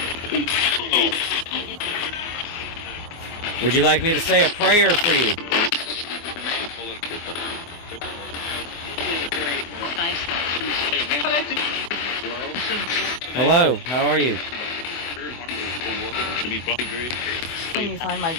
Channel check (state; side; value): late; right; 24 ms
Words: Would you like me to say a prayer for you? Hello, how are you? Can you find my